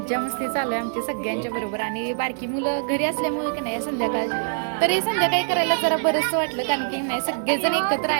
मस्ती चालू आहे आमची सगळ्यांच्या बरोबर. आणि बारकी मुलं घरी असल्यामुळे की नाही संध्याकाळची, तर हे संध्याकाळी करायला जरा बरंच वाटलं, कारण की नाही सगळेजण एकत्र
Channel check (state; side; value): silent; left; 59 dB below the other